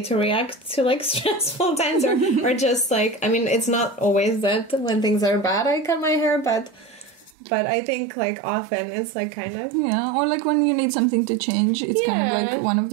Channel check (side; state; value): left; drops out; at 7.4 s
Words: to react to like stressful times or just like, I mean, it's not always that when things are bad I cut my hair, but I think like often it's like kind of or like when you need something to change, it's kind of like one of